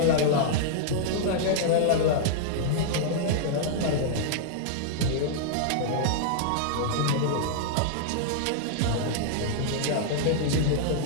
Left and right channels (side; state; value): both; different; correlation -0.01